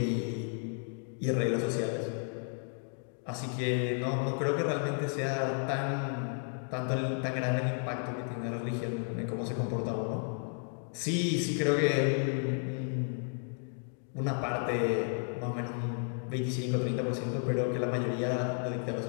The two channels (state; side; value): silent; right; 56 dB below the other